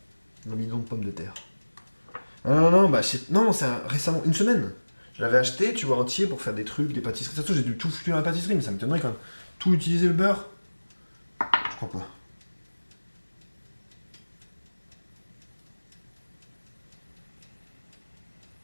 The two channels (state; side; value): inverted; both; correlation -1.00